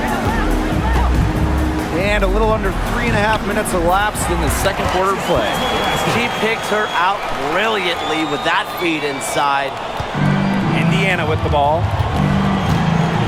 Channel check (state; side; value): identical; both; correlation 1.00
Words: And a little under 3.5 minutes elapsed in the second quarter play. She picked her out brilliantly with that feed inside. Indiana with the ball.